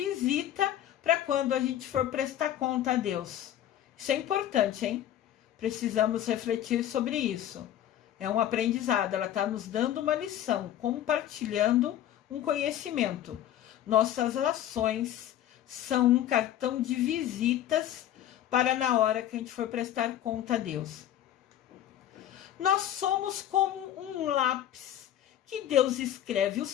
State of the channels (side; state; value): right; quieter; 11.6 dB